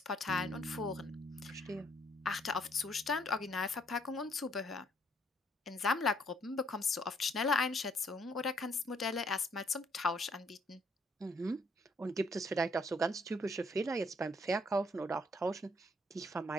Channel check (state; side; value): normal; both; correlation 0.67